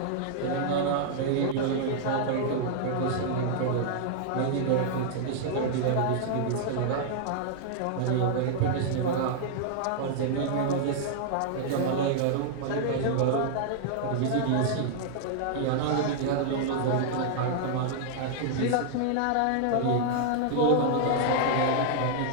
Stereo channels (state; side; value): different; both; correlation -0.01